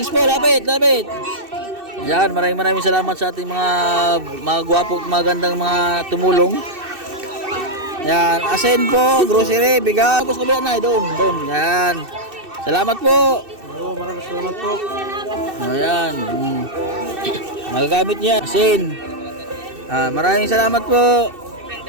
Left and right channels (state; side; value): late; left; 2.6 ms